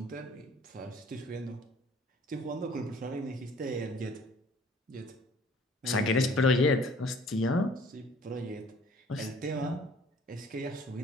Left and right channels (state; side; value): normal; both; correlation 0.53